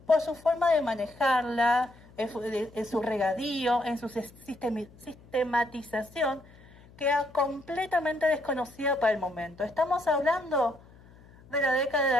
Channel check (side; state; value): left; noise; hum, 24 dB below the sound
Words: Por su forma de manejarla, en su regadío, en su sistematización, que era completamente desconocida para el momento. Estamos hablando de la